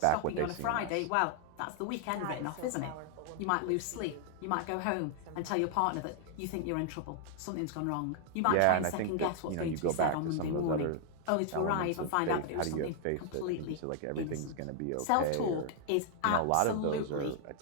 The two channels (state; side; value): different; both; correlation 0.00